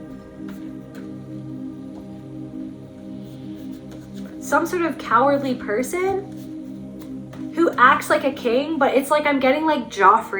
Some sort of cowardly person who acts like a king, but it's like I'm getting like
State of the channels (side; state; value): both; identical; correlation 1.00